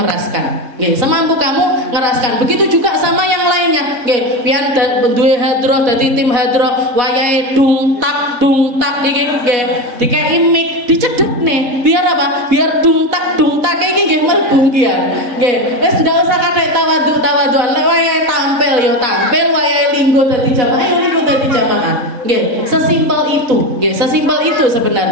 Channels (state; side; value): late; left; 4.1 ms